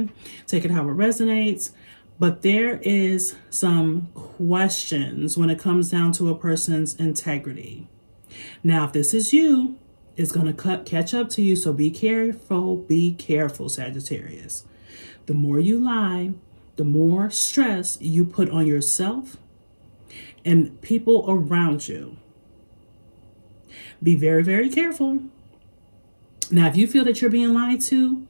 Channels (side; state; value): both; inverted; correlation -1.00